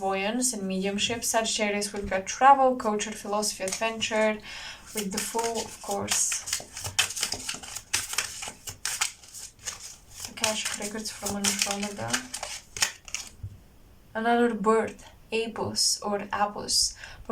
and mediumship. Sagittarius, we've got travel, culture, philosophy, adventure. With the Fool, of course, Akashic records from Andromeda. Another bird, Apus or Apus.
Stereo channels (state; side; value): identical; both; correlation 1.00